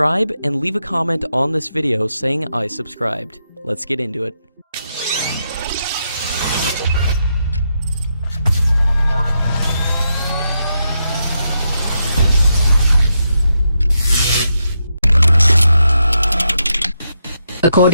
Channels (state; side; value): inverted; both; correlation -0.83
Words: and leave a comment on this video saying I subscribed. Let's get into it.